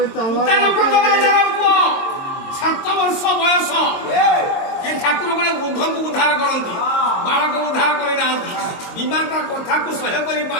ପୁଅ 7 ବର୍ଷ ବୟସ ଏ ଠାକୁର ଗୋଟେ ବୃଦ୍ଧକୁ ଉଦ୍ଧାର କରନ୍ତି ବାଳକ ଉଦ୍ଧାର କରିନାହାନ୍ତି ବିମା ତା କଥାକୁ ସହ୍ୟ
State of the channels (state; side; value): late; right; 22 ms